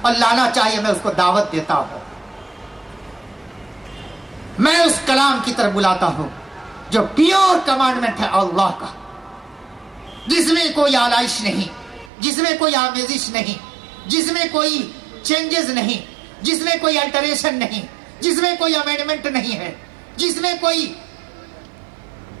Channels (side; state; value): left; drops out; at 12.1 s